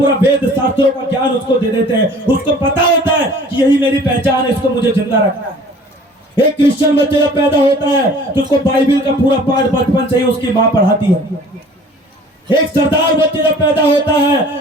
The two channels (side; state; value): both; normal; correlation 0.49